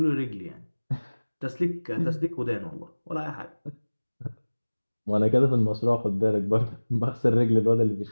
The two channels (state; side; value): inverted; both; correlation -1.00